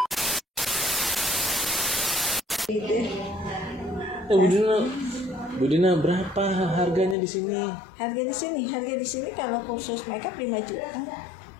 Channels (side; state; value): right; drops out; at 7.2 s